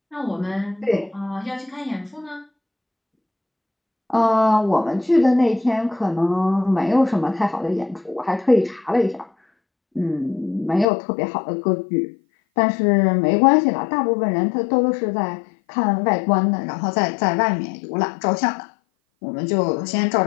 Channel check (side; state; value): right; drops out; at 10.9 s